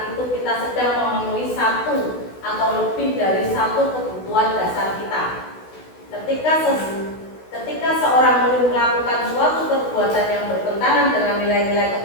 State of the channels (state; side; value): late; right; 16 ms